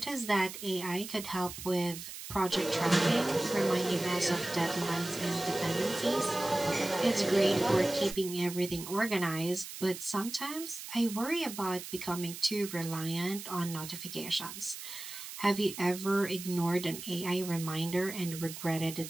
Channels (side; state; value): right; noise; hiss, 10 dB below the sound